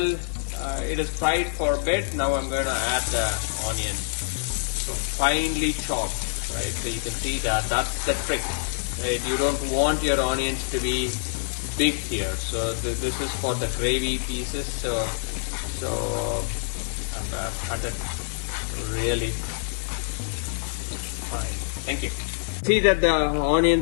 it is fried for a bit, now I'm going to add the onions. So finely chopped, right? So you can see that that's the trick, right? You don't want your onions to be big here. So this is for the gravy pieces. So I've cut it really fine. Thank you. See that the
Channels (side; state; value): right; silent; 61 dB below the other